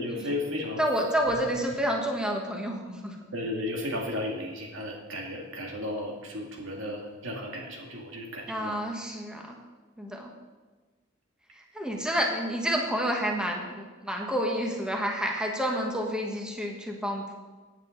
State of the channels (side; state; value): both; normal; correlation 0.46